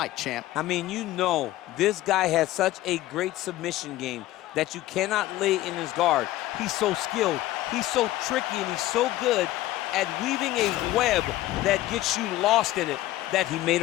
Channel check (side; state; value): right; quieter; 15.8 dB